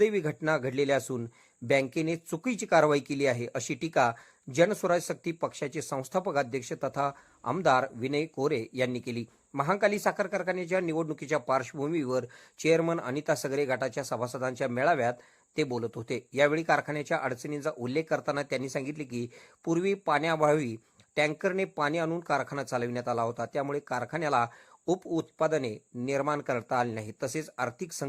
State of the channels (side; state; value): both; identical; correlation 1.00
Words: घटना घडलेल्या असून बँकेने चुकीची कारवाई केली आहे, अशी टीका जनस्वराज शक्ती पक्षाचे संस्थापक अध्यक्ष तथा आमदार विनय कोरे यांनी केली। महांकाली साखर कारखान्याच्या निवडणुकीच्या पार्श्वभूमीवर चेअरमन अनिता सगरे गटाच्या सभासदांच्या मेळाव्यात ते बोलत होते। यावेळी कारखान्याच्या अडचणींचा उल्लेख करताना त्यांनी सांगितले की पूर्वी पाण्याअभावी टँकरने पाणी आणून कारखाना चालविण्यात आला होता, त्यामुळे कारखान्याला उपउत्पादने निर्माण करता आली नाही, तसेच आर्थिक